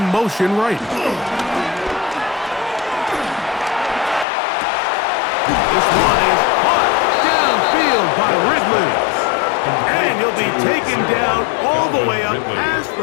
motion right. This one is caught downfield by Ridley. And he'll be taken down all the way up past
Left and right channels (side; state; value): right; drops out; at 4.2 s